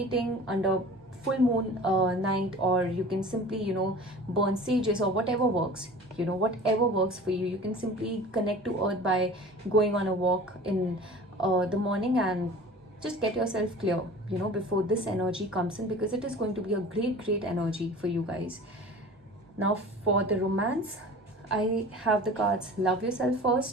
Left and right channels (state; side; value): normal; both; correlation 0.41